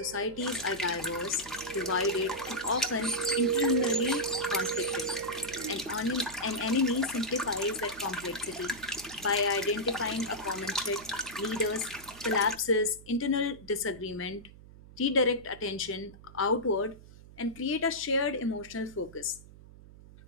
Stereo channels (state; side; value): noise; right; hum, 19 dB below the sound